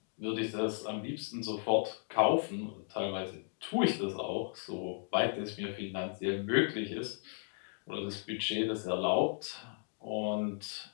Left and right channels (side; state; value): right; silent; 54 dB below the other